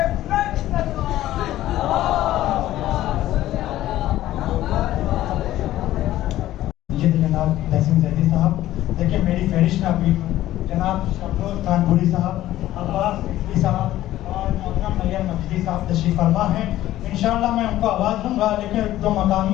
जनाब तहसीन जदी साहब, देखिए मेरी फहरिस्त में अभी जनाब शबरोज कानपुरी साहब, अब्बास सिद्दीकी साहब और मोहतरम नैयर मजीदी साहब तशरीफ फरमा हैं। इंशाअल्लाह मैं उनको आवाज़ दूंगा, लेकिन जो मकामी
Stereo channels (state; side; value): quieter; right; 14.3 dB